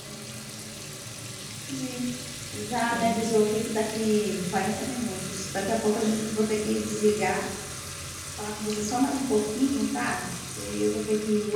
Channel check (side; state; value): both; identical; correlation 1.00